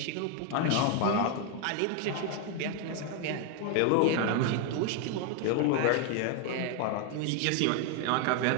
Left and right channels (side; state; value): both; different; correlation 0.01